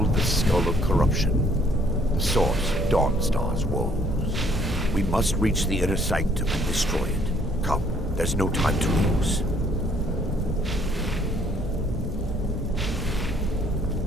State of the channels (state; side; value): normal; both; correlation 0.63